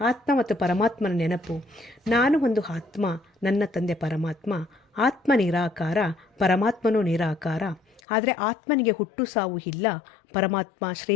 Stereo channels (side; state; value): right; drops out; at 8.0 s